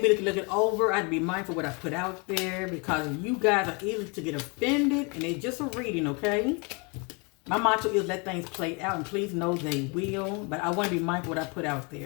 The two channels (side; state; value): right; quieter; 31.7 dB